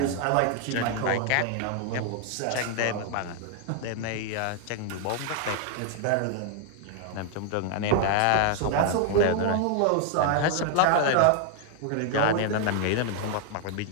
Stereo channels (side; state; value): both; different; correlation 0.00